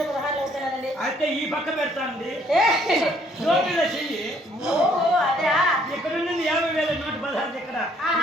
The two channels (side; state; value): both; normal; correlation 0.64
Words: అవుతున్నదండి. అయితే ఈ పక్క పెడతాండి. ఏ! జోబీలో చెయ్యి. ఓహో, అదా? ఇక్కడ నుండి 50,116 ఇక్కడ